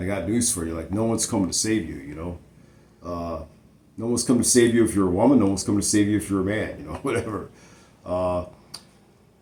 got news for you: like, no one's coming to save you. No one's coming to save you if you're a woman. No one's coming to save you if you're a man. Whatever. Uh,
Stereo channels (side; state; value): both; identical; correlation 1.00